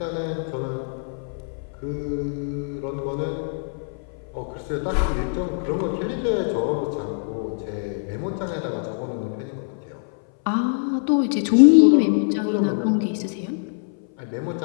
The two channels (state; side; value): silent; right; 60 dB below the other